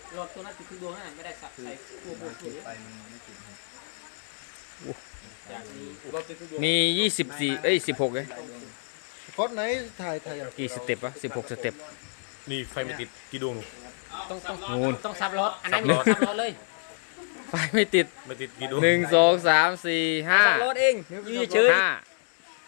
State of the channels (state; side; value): silent; right; 55 dB below the other